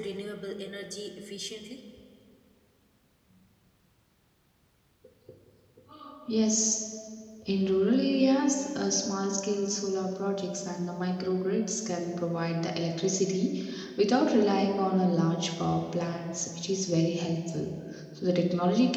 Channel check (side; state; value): both; identical; correlation 1.00